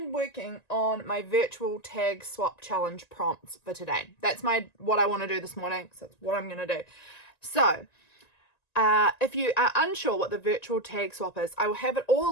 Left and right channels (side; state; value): right; late; 1.9 ms